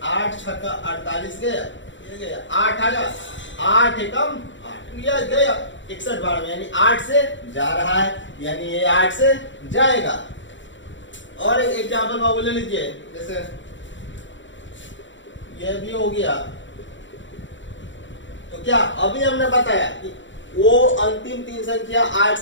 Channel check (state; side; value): late; right; 0.54 ms